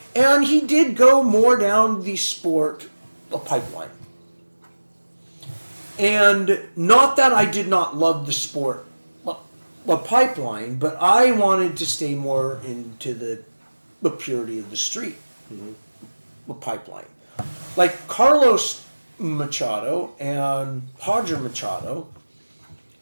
and he did go more down the sport pipeline. And not that I did not love the sport pipeline, but I wanted to stay more into the purity of the street pipeline. Like Carlos Machado and Roger Machado,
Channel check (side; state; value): both; inverted; correlation -1.00